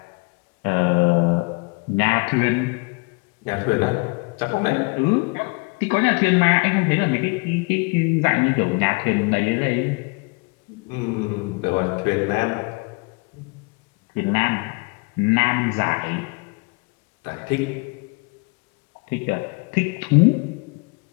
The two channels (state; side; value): quieter; right; 30.0 dB